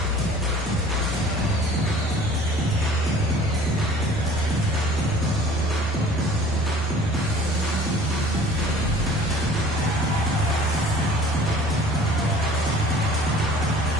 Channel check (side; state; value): both; normal; correlation 0.48